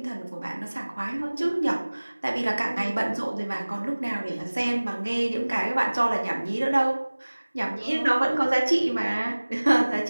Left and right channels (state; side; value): inverted; both; correlation -1.00